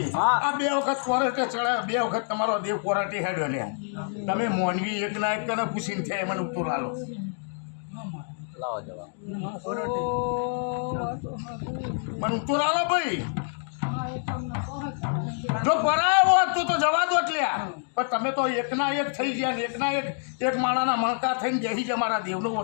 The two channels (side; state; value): right; silent; digital silence